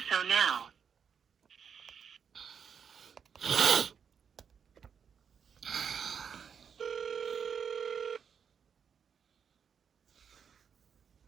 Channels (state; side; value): quieter; left; 7.1 dB